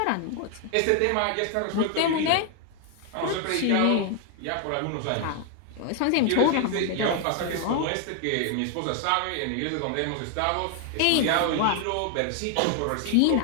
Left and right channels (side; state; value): both; different; correlation 0.00